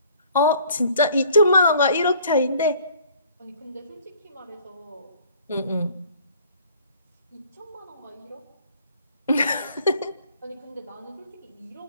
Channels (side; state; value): both; inverted; correlation -0.55